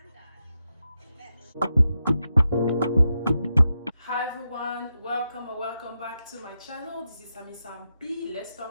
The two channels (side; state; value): both; inverted; correlation -0.87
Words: done. Bitch. Hi everyone, welcome or welcome back to my channel. This is Sami P. Let's